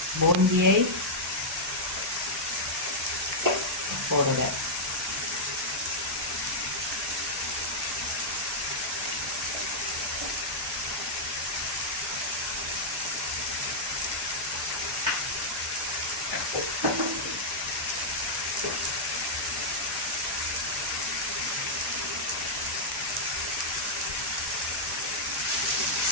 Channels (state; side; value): normal; both; correlation -0.07